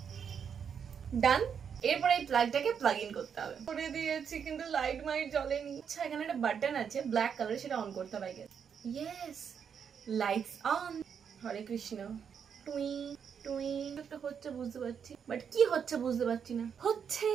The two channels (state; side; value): quieter; left; 7.3 dB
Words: ডান। এরপরে এই প্লাগটাকে প্লাগ ইন করতে হবে। করে দিয়েছি কিন্তু লাইট মাইট জ্বলেনি। আচ্ছা এখানে একটা বাটন আছে ব্ল্যাক কালার, সেটা অন করতে হবে আগে। Yes, lights on. Hare Krishna. টুই টুই একটা হচ্ছে বুঝতে পারছি, বাট কি হচ্ছে বুঝতে পারছি না। হচ্ছে